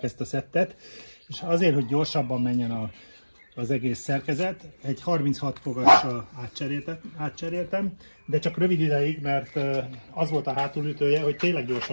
ezt a szettet, és azért, hogy gyorsabban menjen az egész szerkezet, egy 36 fogassal átcseréltem, de csak rövid ideig, mert az volt a hátulütője, hogy tényleg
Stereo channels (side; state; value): both; inverted; correlation -1.00